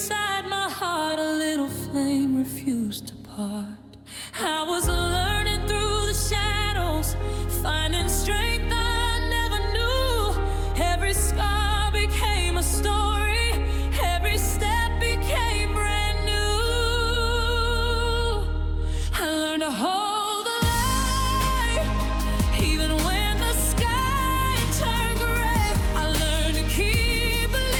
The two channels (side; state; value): both; identical; correlation 1.00